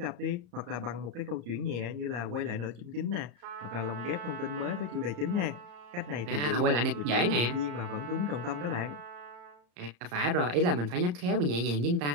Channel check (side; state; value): left; late; 34 ms